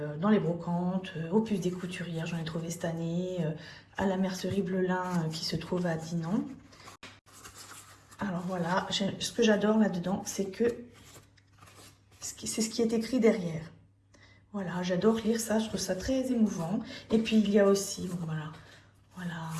dans les brocantes, au Puce des Couturières, j'en ai trouvé cette année, à la mercerie Blelin qui se trouve à Dinan. Alors voilà, ce que j'adore là-dedans, c'est que c'est ce qui est écrit derrière. Voilà, j'adore lire ça, je trouve ça très émouvant. Et puis il y a aussi, bon, voilà,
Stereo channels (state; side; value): identical; both; correlation 1.00